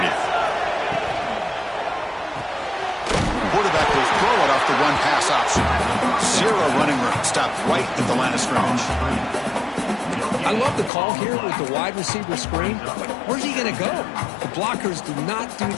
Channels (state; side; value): drops out; right; at 10.9 s